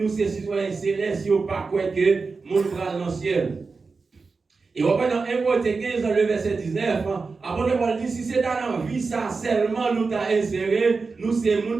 c'est citoyens célestes, si on pas quoi que mon bras dans le ciel. Et on va dans 1 Corinthiens 15, dans le verset 19, apôtre Paul dit si c'est dans la vie, ça seulement nous t'a inséré, nous c'est le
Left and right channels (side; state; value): left; quieter; 4.4 dB